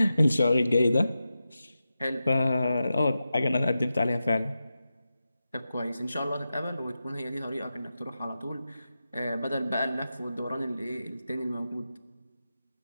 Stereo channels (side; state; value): both; inverted; correlation -0.91